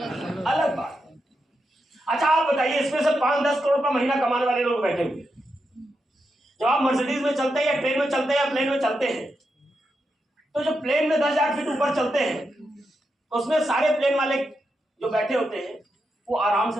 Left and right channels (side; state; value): both; normal; correlation 0.86